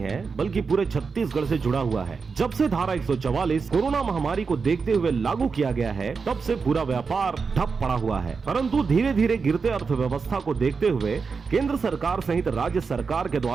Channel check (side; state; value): left; quieter; 5.1 dB